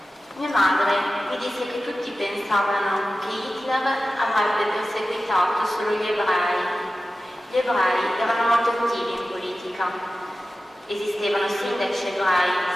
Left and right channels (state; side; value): normal; both; correlation 0.94